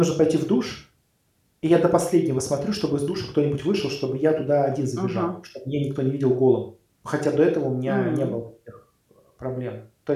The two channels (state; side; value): identical; both; correlation 1.00